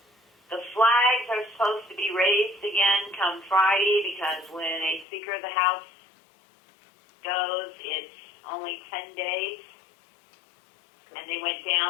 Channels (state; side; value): drops out; right; at 5.1 s